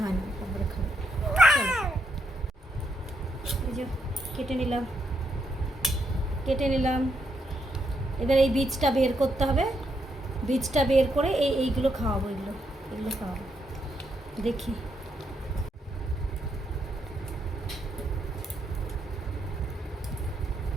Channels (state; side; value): normal; both; correlation 0.78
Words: হয় না, তারপরে খাবো। চলো এই যে কেটে নিলাম কেটে নিলাম। এবার এই বীজটা বের করতে হবে, বীজটা বের করে এইগুলো খাওয়াবো, এগুলো খাওয়াবো। দেখি